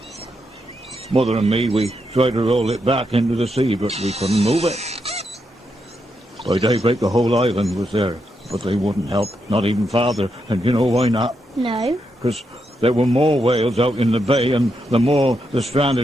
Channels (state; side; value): normal; both; correlation 0.82